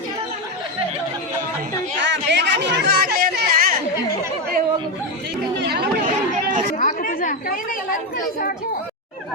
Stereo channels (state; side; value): normal; both; correlation 0.10